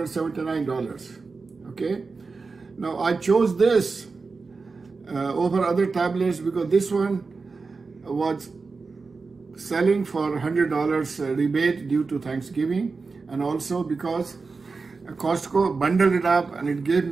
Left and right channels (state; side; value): quieter; left; 4.3 dB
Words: Okay, now I chose this over other tablets because this one was selling for $100 rebate due to Thanksgiving, and also because Costco bundled it up and it gave